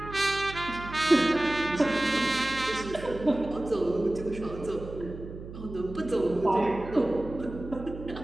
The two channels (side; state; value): right; noise; hum, 12 dB below the sound